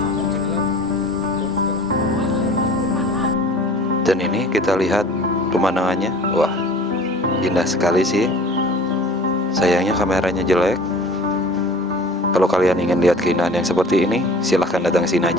Dan ini kita lihat pemandangannya. Wah, indah sekali sih. Sayangnya kameranya jelek. Kalau kalian ingin lihat keindahan yang seperti ini, silahkan datang sini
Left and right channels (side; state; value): both; normal; correlation 0.44